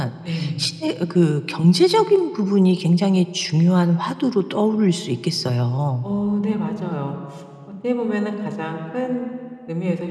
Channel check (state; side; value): identical; both; correlation 1.00